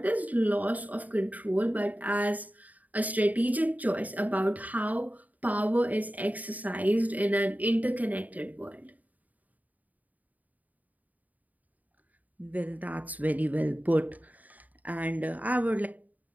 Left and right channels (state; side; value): late; left; 0.077 ms